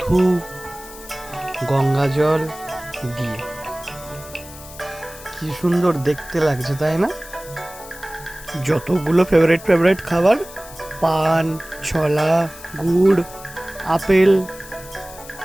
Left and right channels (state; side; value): noise; left; hiss, 17 dB below the sound